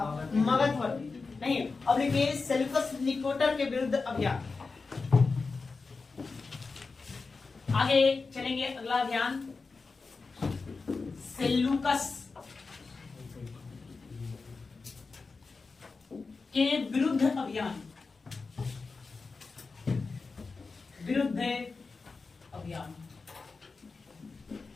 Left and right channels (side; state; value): right; quieter; 4.3 dB